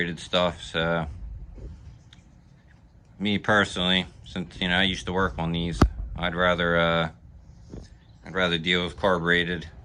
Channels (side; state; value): both; identical; correlation 1.00